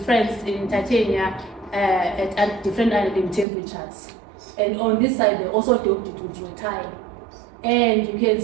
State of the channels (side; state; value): left; drops out; at 3.5 s